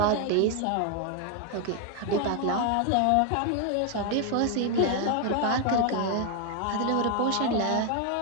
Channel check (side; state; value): both; different; correlation 0.01